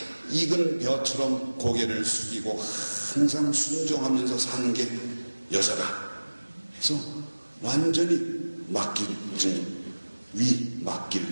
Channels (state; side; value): inverted; both; correlation -1.00